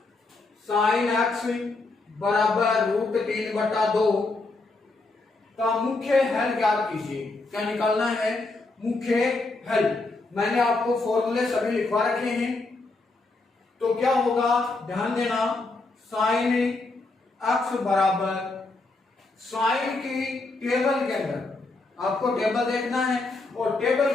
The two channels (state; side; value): quieter; right; 3.3 dB